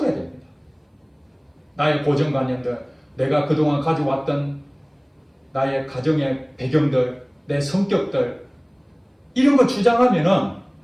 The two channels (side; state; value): both; identical; correlation 1.00